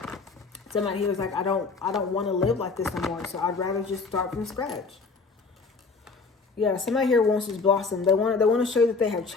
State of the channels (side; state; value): right; quieter; 4.4 dB